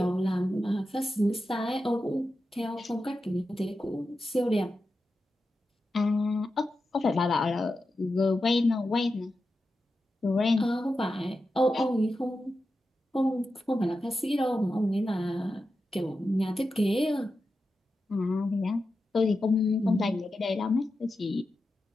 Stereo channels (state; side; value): normal; both; correlation 0.90